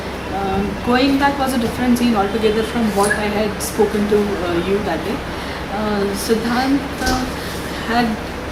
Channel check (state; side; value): identical; both; correlation 1.00